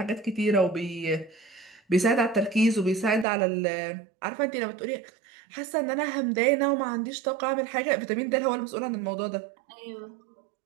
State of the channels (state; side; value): drops out; left; at 3.2 s